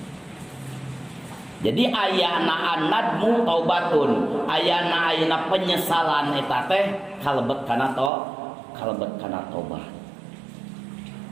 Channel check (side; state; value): left; drops out; at 8.1 s